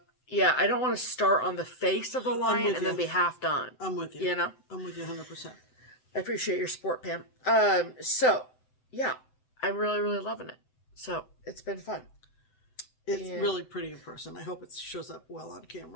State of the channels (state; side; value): late; right; 7.9 ms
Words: Yeah, I don't want to start on the face of the lion and then be half done. I'm with you. You know? I'm with you 100%. I appreciate your support, Pam. So, yeah, I'm really, really loving it. So, it's been fun. It's really pretty in person. I hope it shows up well on